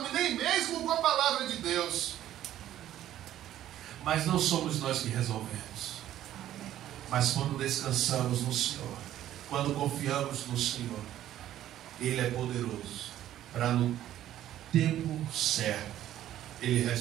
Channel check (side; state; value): left; quieter; 12.5 dB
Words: nem mesmo com a palavra de Deus. Mas não somos nós que resolvemos. Mas quando descansamos no Senhor, quando confiamos no Senhor, Ele é poderoso para no tempo certo Ele